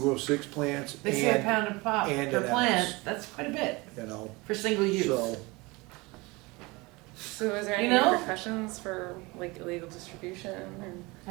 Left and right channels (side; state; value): left; quieter; 24.2 dB